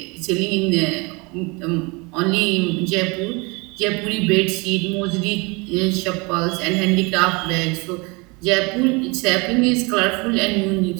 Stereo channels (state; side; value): quieter; left; 27.8 dB